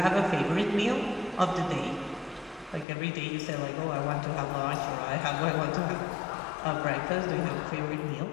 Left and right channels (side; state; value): right; drops out; at 2.9 s